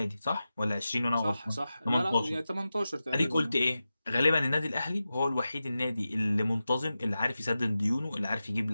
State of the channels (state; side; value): inverted; both; correlation -0.93